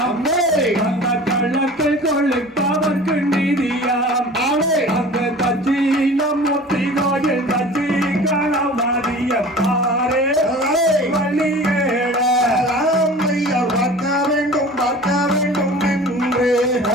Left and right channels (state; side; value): normal; both; correlation 0.41